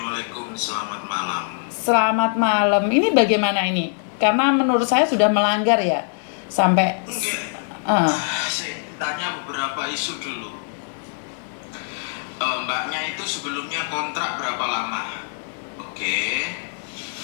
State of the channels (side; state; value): right; silent; 64 dB below the other